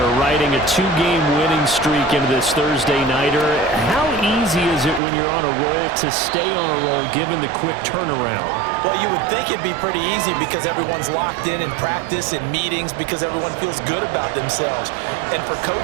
riding a 2-game winning streak into this Thursday nighter. How easy is it when you're on a roll to stay on a roll given the quick turnaround? Well, you would think it'd be pretty easy because everyone's locked in practice and meetings because everyone feels good about themselves. And for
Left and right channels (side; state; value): left; drops out; at 5.0 s